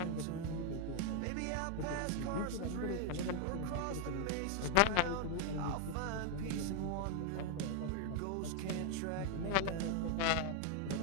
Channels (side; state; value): both; different; correlation 0.00